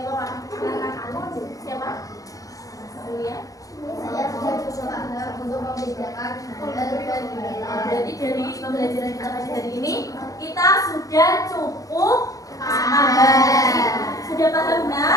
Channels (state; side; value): late; right; 0.17 ms